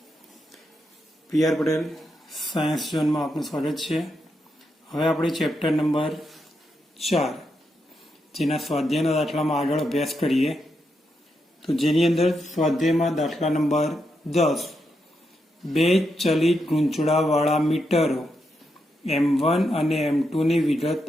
PR Patel science ઝોનમાં આપનું સ્વાગત છે. હવે આપણે ચેપ્ટર નંબર 4 જેના સ્વાધ્યાયના દાખલામાં આગળ અભ્યાસ કરીએ. તો જેની અંદર સ્વાધ્યાયમાં દાખલા નંબર 10 બે ચલિત ગૂંચળાવાળા મીટરો M1 અને M2 ની વિગત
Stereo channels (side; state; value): both; normal; correlation 0.83